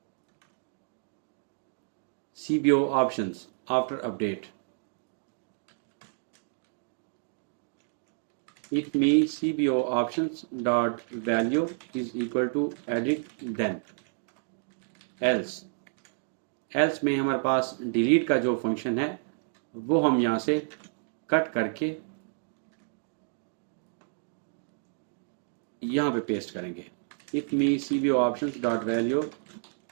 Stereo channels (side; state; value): left; silent; digital silence